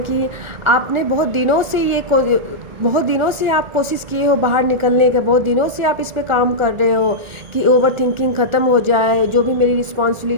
आपने बहुत दिनों से आप कोशिश किए हो बाहर निकलने के। बहुत दिनों से आप इस पे काम कर रहे हो कि ओवर थिंकिंग ख़त्म हो जाए, जो भी मेरी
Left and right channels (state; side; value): late; left; 1.4 ms